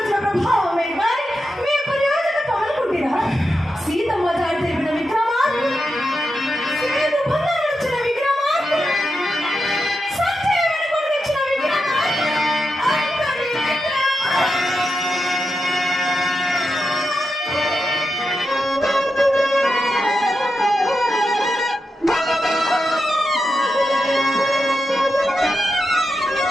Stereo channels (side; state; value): both; normal; correlation 0.88